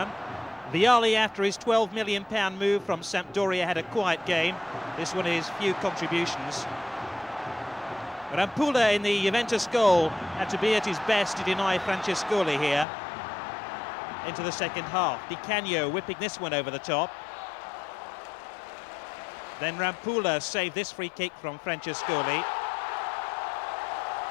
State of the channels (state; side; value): drops out; right; at 12.9 s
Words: Vialli, after his £12 million move from Sampdoria, had a quiet game. This one is few contributions. Rampulla in the Juventus goal had to be at his best to deny Francescoli here. Into the second half. Di Canio whipping this one over the top. Then Rampulla saved this free kick from Francescoli.